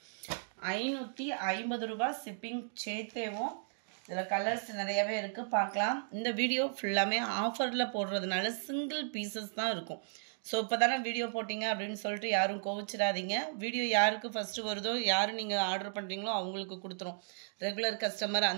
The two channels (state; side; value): silent; left; digital silence